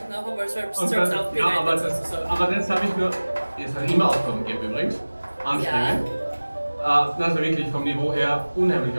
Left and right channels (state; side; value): inverted; both; correlation -1.00